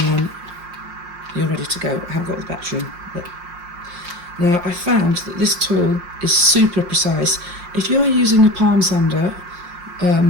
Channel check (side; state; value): left; late; 5.6 ms